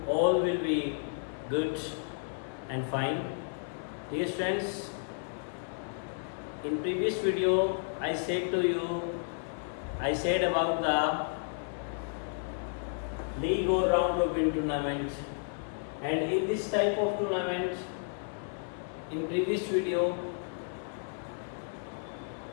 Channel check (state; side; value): silent; right; 56 dB below the other